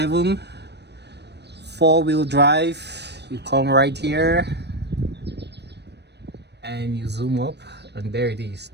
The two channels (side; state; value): left; late; 0.49 ms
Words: four-wheel drive, you come right here and you zoom up, and there it is.